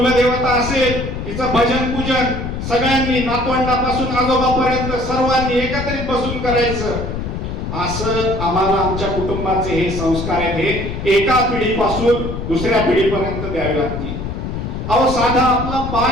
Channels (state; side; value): noise; left; rumble, 5 dB below the sound